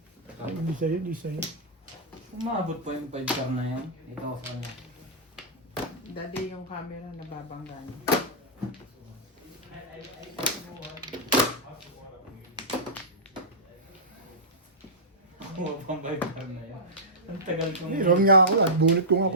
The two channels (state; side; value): normal; both; correlation -0.14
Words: Ay, hindi sa'yo, hindi sa'yo. Umabot po yung 5 car na yan. Ito ako sa kanya. Daddy yung camera nababangga niya. Kuha pang 5 car na yan. Ang tagal kong... Eh, round nga ako at bunot ko nga ako